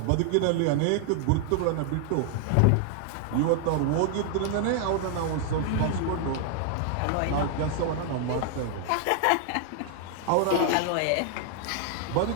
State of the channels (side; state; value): both; different; correlation 0.00